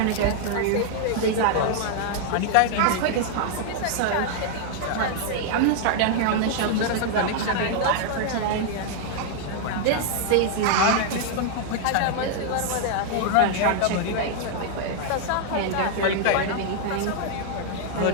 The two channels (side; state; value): both; different; correlation 0.00